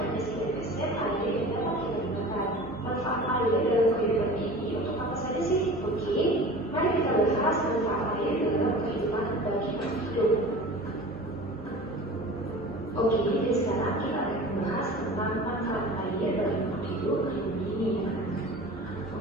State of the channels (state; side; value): normal; both; correlation 0.38